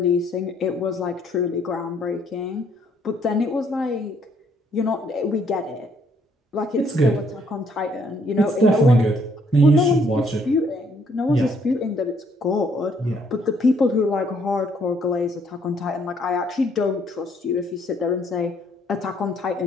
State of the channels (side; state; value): both; normal; correlation 0.67